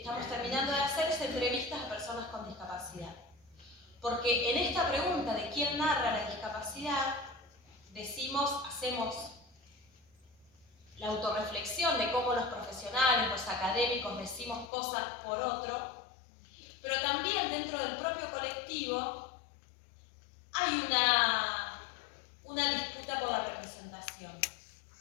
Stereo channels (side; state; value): right; drops out; at 14.7 s